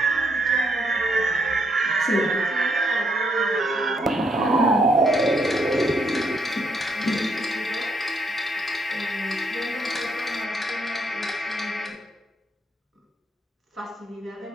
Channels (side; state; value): both; normal; correlation 0.73